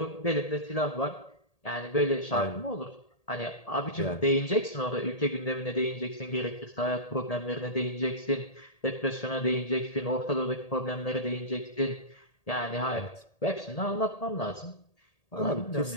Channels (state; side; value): late; right; 1.8 ms